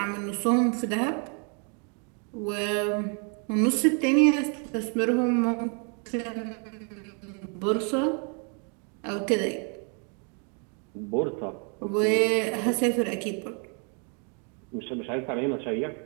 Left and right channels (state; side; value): quieter; left; 38.1 dB